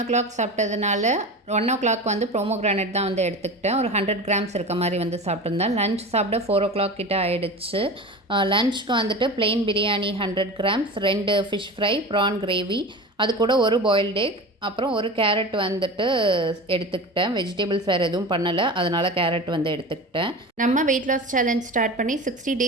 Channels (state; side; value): normal; both; correlation 0.31